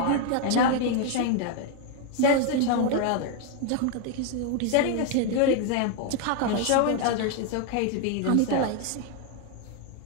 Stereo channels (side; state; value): both; different; correlation 0.01